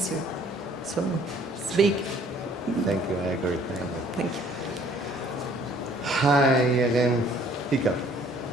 So it's big. Thank you, I agree. Thank you. Hi again, Iker.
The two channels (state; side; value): normal; both; correlation 0.57